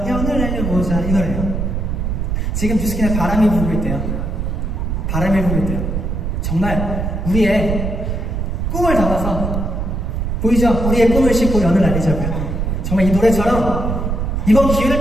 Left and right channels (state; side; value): noise; right; rumble, 2 dB below the sound